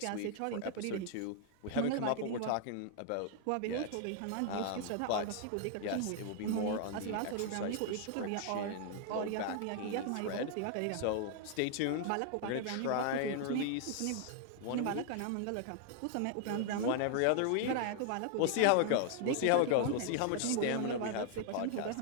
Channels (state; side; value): different; both; correlation 0.00